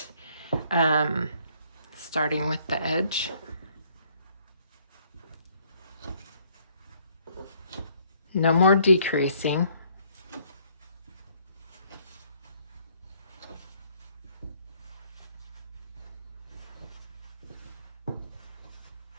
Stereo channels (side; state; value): both; inverted; correlation -0.64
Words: starting with the edge. No more decreasing.